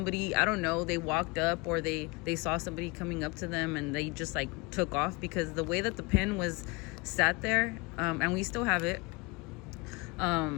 I don't know, they walked up or they saw somebody coming up to them, and they just like took off, because the way that the pen was sat there, and we still have it,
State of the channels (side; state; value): right; quieter; 26.3 dB